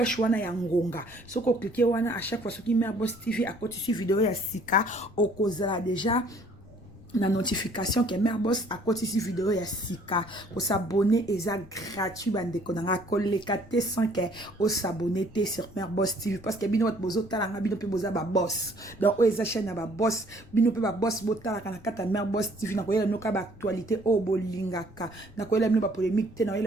wana ya ngonga. So ko cliquer wana à chaque fois ce qui met à Boss TV à côté de vidéo ya sika au cause déjà la notification que Mère Boss à côté de vidéo ya sika pour s'abonner et ça gratuit bande konanga kolekate sans que au s'abonner sur Mère Boss TV parce que bino wat bozo talanga bino pe boza ba boss donc o eza chaîne ba boss bino pe ba boss botala kana kata Mère Boss TV na koyela no ka ba actualité o bolingaka na koyela bino ba polémique te na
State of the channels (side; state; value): left; noise; rumble, 21 dB below the sound